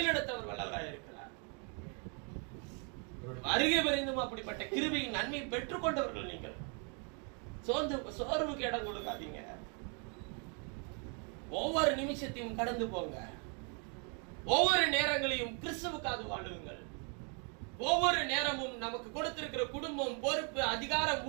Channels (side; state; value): left; quieter; 37.6 dB